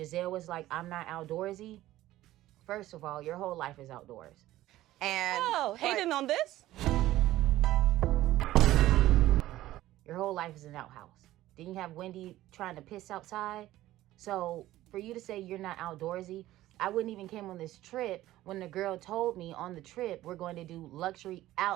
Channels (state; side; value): quieter; left; 15.2 dB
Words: was like, I'm not outdoorsy. First of all, your whole life is outdoors. And hating on this? Your whole life is an outhouse. Didn't you have Wendy trying to piss outside? So for you to say you're not outdoorsy, I wouldn't even came on this trip when the girl told me on the trip we're going to do luxury